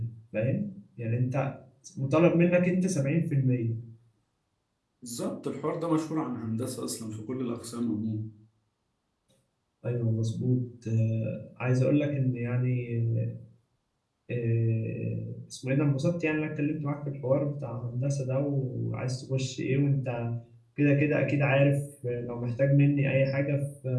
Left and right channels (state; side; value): identical; both; correlation 1.00